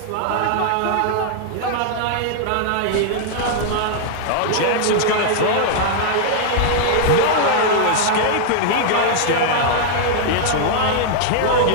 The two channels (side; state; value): both; different; correlation -0.01